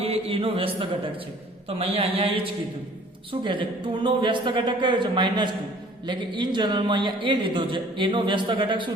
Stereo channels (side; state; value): both; normal; correlation 0.53